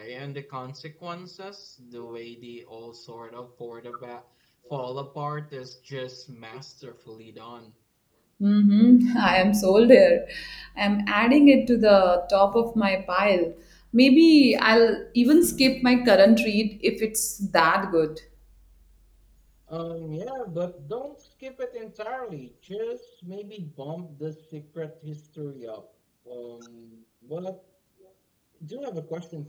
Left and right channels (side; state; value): both; identical; correlation 1.00